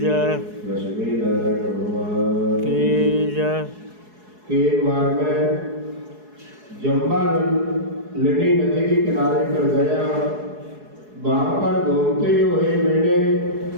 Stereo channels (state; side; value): late; left; 4.7 ms